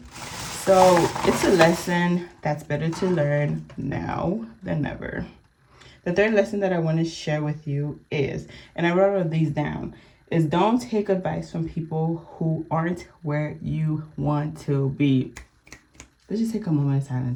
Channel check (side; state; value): both; identical; correlation 1.00